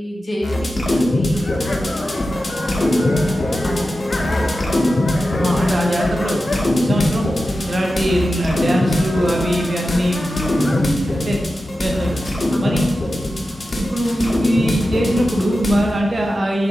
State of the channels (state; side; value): normal; both; correlation 0.92